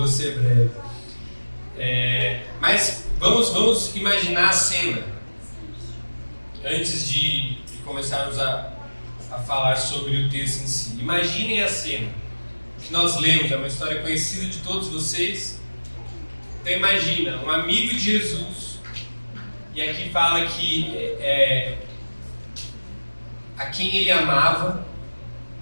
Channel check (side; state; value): both; inverted; correlation -1.00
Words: ser breve. Mas vamos imaginar a cena antes de começarmos a falar sobre o texto em si. Imaginem a cena que nós lemos, é uma história conhecida de todos vocês. Então imagina, um amigo de Jesus, e aqui fala que a quem ele amava,